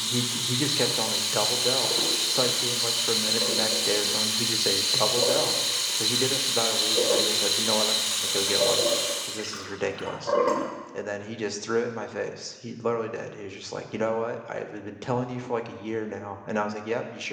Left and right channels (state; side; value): identical; both; correlation 1.00